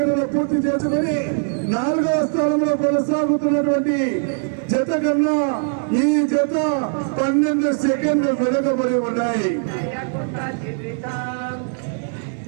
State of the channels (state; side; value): silent; left; digital silence